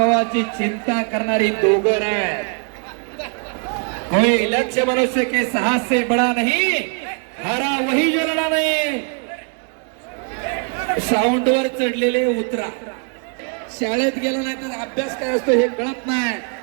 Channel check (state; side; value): quieter; left; 39.1 dB